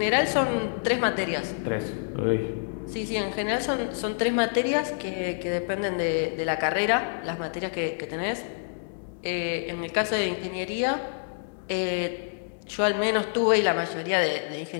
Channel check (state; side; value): silent; right; digital silence